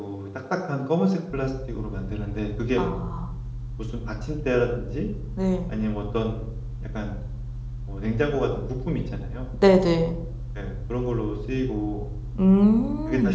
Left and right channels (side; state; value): both; identical; correlation 1.00